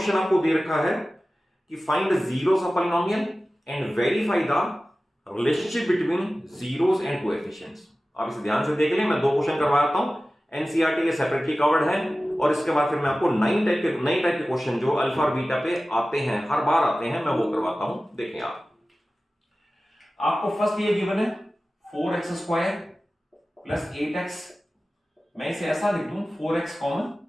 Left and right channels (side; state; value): both; normal; correlation 0.96